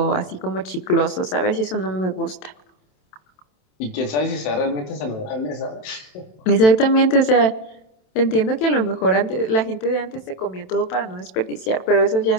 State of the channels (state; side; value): late; right; 27 ms